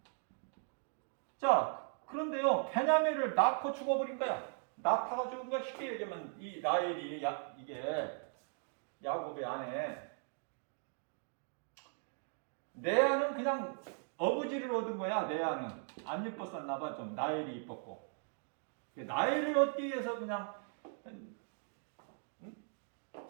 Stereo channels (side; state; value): left; silent; 52 dB below the other